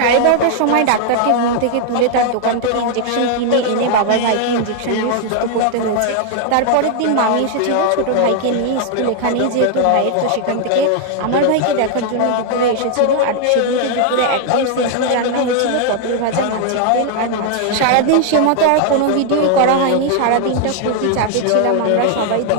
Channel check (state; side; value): different; both; correlation 0.00